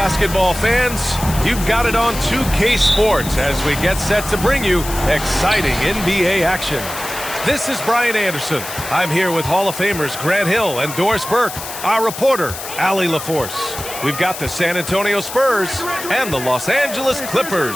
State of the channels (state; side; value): noise; left; hiss, 9 dB below the sound